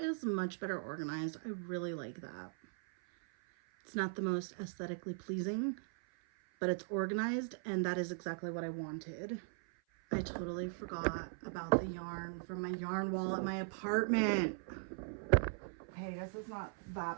much better organized. I really like that. It's not the most aesthetically pleasing, but it's organized, and that is exactly what I wanted. I totally forgot about the yarn from my yarn wall at my apartment. Okay, I guess it's not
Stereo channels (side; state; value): left; silent; 52 dB below the other